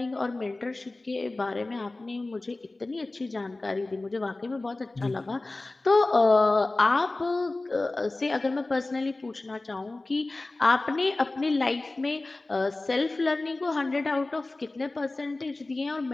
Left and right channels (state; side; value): quieter; right; 3.0 dB